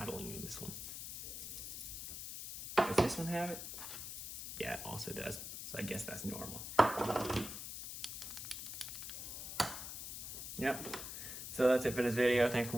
in this one. Does this one have it? Yeah, it also does. So I guess that's normal. Yep. So that's it for this video. Thanks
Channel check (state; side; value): noise; left; hiss, 7 dB below the sound